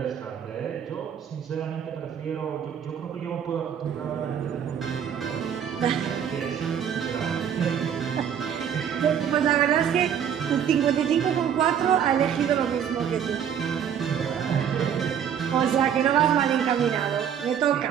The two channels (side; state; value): left; quieter; 8.5 dB